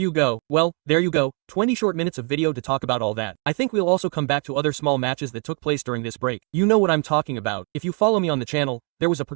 go. Well, there you go. 20 short minutes of video to talk about all that. I think we'll also come back to other small matches that took place during this break. You know what I'm talking about. If you follow me on the channel, there was a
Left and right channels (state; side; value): quieter; left; 37.2 dB